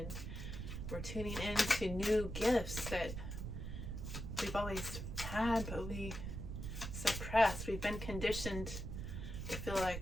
we're tuning into new gifts that we've always had but we suppressed. We've been conditioned to feel like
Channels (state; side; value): noise; right; rumble, 6 dB below the sound